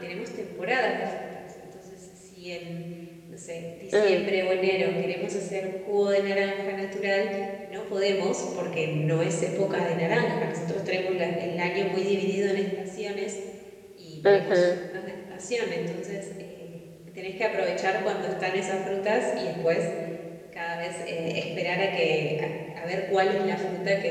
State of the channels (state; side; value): identical; both; correlation 1.00